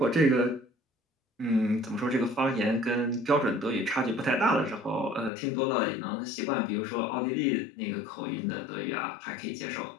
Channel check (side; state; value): right; drops out; at 5.3 s